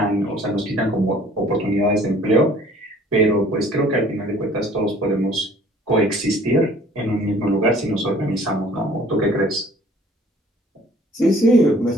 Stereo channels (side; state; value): both; normal; correlation 0.54